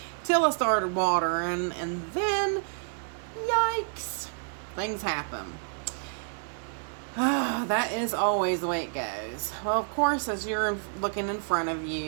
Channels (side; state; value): left; silent; digital silence